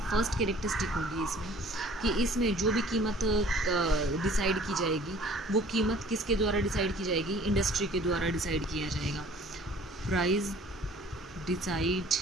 फर्स्ट कैरेक्टरिस्टिक होगी इसमें कि इसमें जो भी कीमत डिसाइड की जाएगी वो कीमत किसके द्वारा डिसाइड की जाएगी? इंडस्ट्री के द्वारा डिसाइड किया जाएगा। Price decide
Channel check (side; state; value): both; normal; correlation 0.51